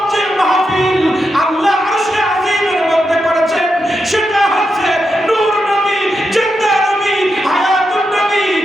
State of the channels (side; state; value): both; normal; correlation 0.86